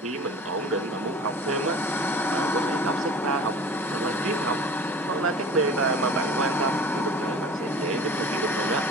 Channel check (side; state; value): both; normal; correlation 0.41